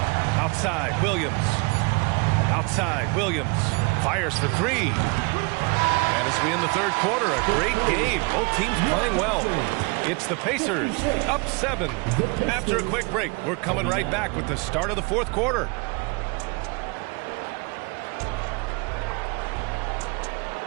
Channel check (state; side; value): quieter; left; 30.2 dB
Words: Outside, Williams. Outside, Williams. Fires for three. And as we end the third quarter, a great game. Both teams playing well. It's the Pacers up 7. After a quick break, we're coming right back with the start of the fourth quarter.